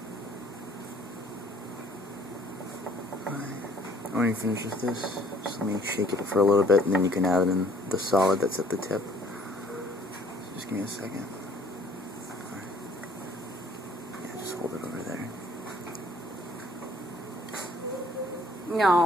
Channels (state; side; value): normal; both; correlation 0.58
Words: When you finish with this, just let me shake it for a little bit, and then you can add in the solid that's at the tip. Just give me a second. Right. Yeah, just hold it over there.